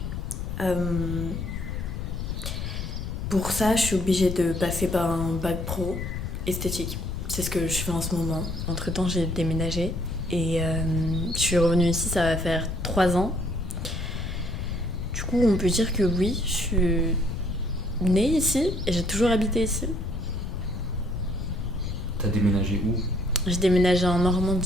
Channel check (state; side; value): noise; left; rumble, 4 dB below the sound